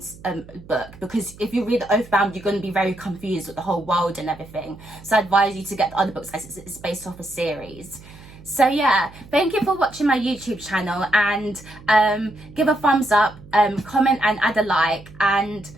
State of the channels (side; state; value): right; noise; hum, 20 dB below the sound